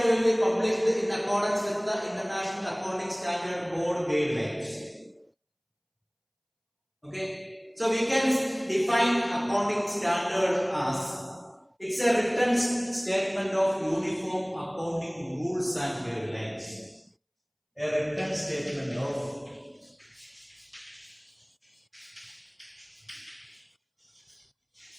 will be published in accordance with the International Accounting Standard Board guidelines. Okay. So we can define accounting standard as it's a written statement of uniform accounting rules and guidelines. A written statement of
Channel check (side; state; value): both; identical; correlation 1.00